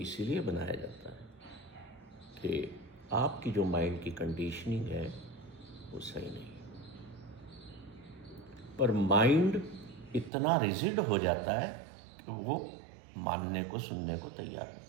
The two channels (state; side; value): drops out; left; at 10.3 s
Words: बनाया जाता है कि आपकी जो माइंड की कंडीशनिंग है वो सही नहीं है। पर माइंड इतना रिजिड हो जाता है कि वो मानने को, सुनने को तैयार